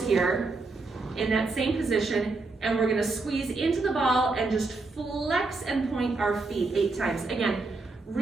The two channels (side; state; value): left; quieter; 3.6 dB